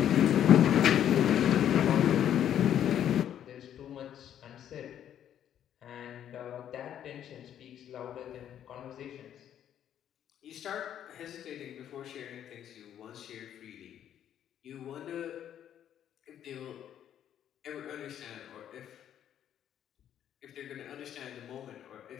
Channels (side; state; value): right; quieter; 10.2 dB